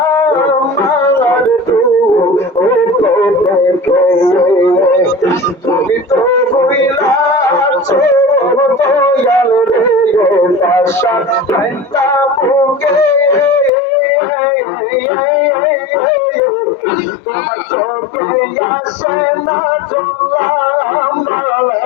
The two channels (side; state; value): right; drops out; at 13.7 s